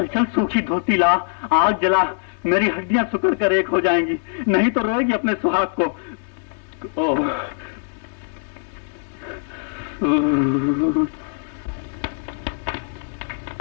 चल, सूखी धोती ला, आग जला, मेरी हड्डियां सुकड़ कर एक हो जाएंगी, नहीं तो रोएगी अपने सुहाग को।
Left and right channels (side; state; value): right; silent; digital silence